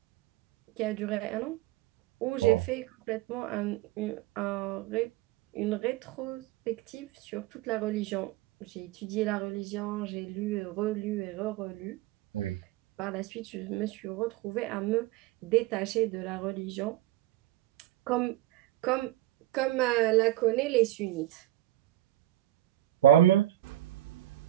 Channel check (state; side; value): quieter; left; 14.6 dB